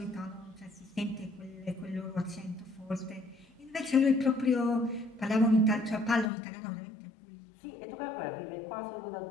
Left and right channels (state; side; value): drops out; right; at 6.3 s